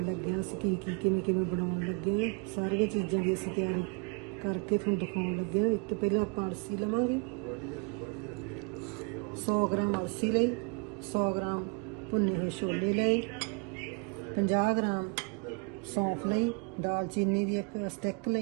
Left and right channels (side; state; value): left; quieter; 33.3 dB